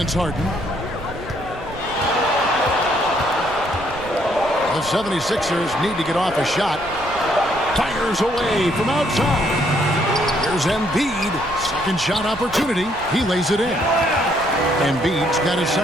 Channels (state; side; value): noise; right; rumble, 17 dB below the sound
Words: Harden. The 76ers need to get off a shot. Fires away from outside. Here's Embiid. Second shot opportunity. He lays it in. Embiid's got his